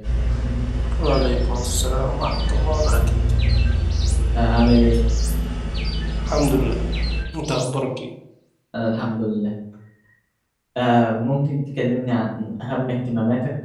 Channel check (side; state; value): both; identical; correlation 1.00